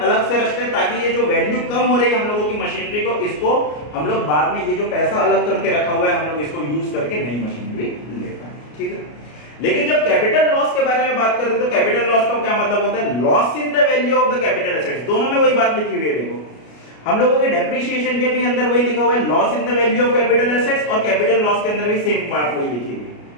अलग से रखते हैं ताकि ये जो वैल्यू कम हो रही है हम लोगों की मशीनरी को, इसको हम लोग बाद में ये जो पैसा अलग करके रखा हुआ है हम लोग इसको यूज करके नई मशीनरी ले पाए, ठीक है। लेकिन जब कैपिटल लॉस के बारे में बात करते हैं तो कैपिटल लॉस का क्या मतलब होता है? Loss in the value of the capital assets. दोनों में वही बात लिखी हुई है, देखो हम लोगों के डेप्रिसिएशन के भी अंदर वही लिखा हुआ है, loss in the value of capital assets, और कैपिटल लॉस के अंदर भी सेम बात वही लिखी हुई है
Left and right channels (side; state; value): right; late; 33 ms